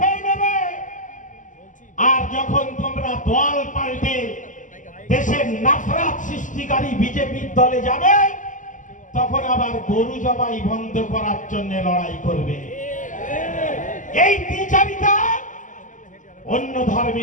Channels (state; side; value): late; right; 0.37 ms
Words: নেবে। আর যখন তোমরা দল পাল্টে দেশের নাফরাত সৃষ্টিকারী বিজেপির দলে যাবে তখন আবার গরু জবাই বন্ধ করার জন্য লড়াই করবে। এই দ্বিচারিতা অন্য